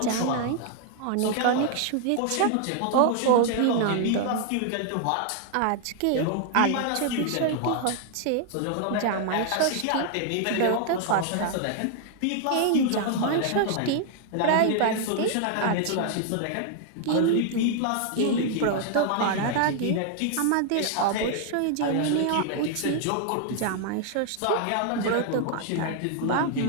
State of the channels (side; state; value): both; different; correlation 0.00